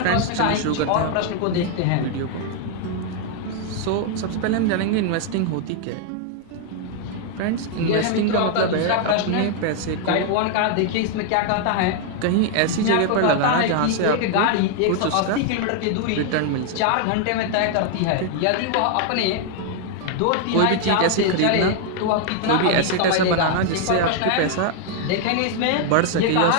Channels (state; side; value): different; both; correlation 0.00